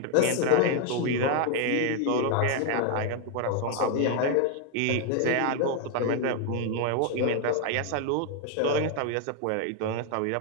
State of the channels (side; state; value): both; different; correlation 0.00